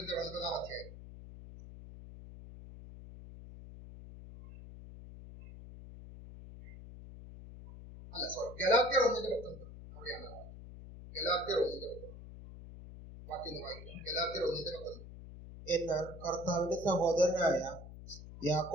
9-ാം അധ്യായം. ഗലാത്യർ 1:19 അവിടെയാണ്. ഗലാത്യർ 1:19 വാക്യം വായിക്കാം. ഗലാത്യർ 1:19. എന്നാൽ കർത്താവിന്റെ സഹോദരനായ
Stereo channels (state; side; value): noise; left; hum, 14 dB below the sound